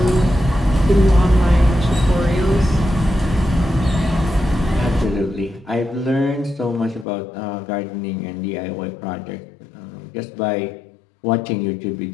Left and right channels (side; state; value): right; drops out; at 7.1 s